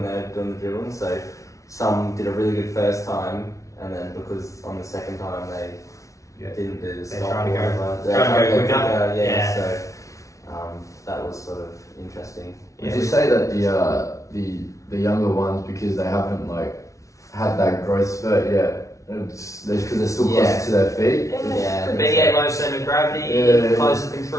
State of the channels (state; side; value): late; right; 0.15 ms